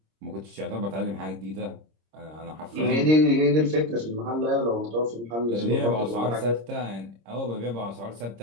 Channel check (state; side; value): late; left; 26 ms